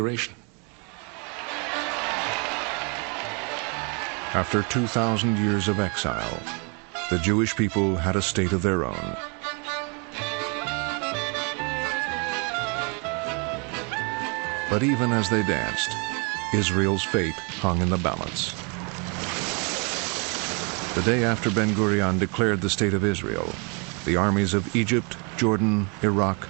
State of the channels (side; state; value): left; quieter; 34.2 dB